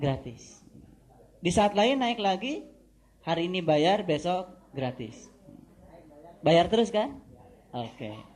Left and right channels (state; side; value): identical; both; correlation 1.00